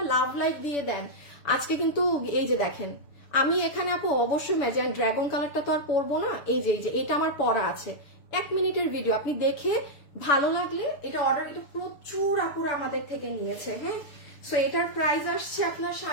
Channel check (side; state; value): right; late; 6.8 ms